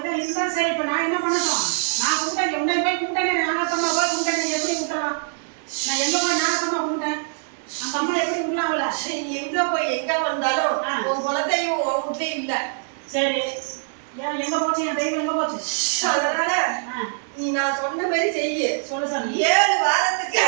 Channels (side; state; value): left; silent; digital silence